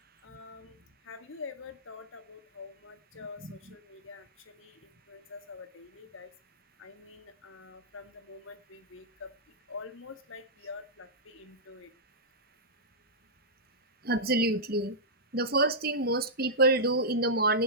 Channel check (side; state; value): both; normal; correlation -0.13